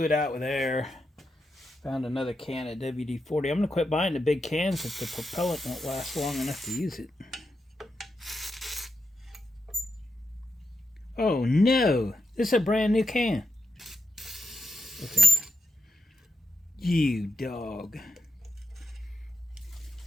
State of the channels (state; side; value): normal; both; correlation 0.84